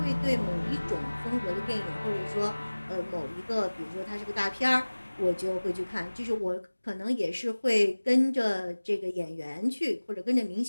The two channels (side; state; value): both; inverted; correlation -1.00